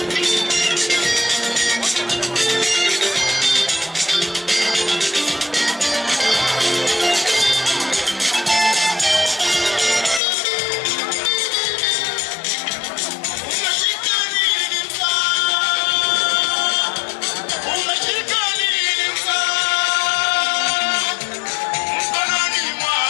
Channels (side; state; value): right; drops out; at 10.2 s